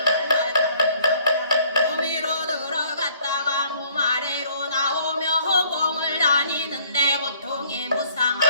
갈라타면서 몸위로 들어갔다가 몸 아래로 나오며 허공을 다니는데 고통이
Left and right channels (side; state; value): both; inverted; correlation -0.59